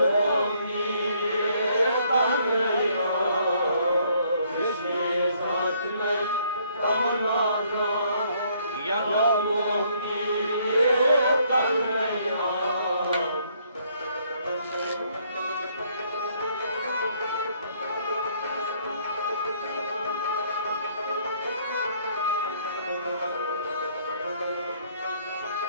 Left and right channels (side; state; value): both; inverted; correlation -0.66